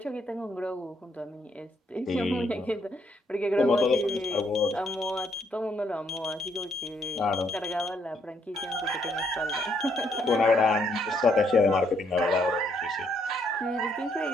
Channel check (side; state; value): both; normal; correlation 0.72